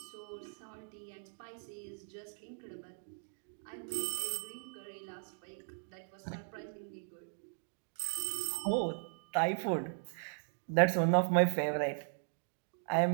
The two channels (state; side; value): silent; left; digital silence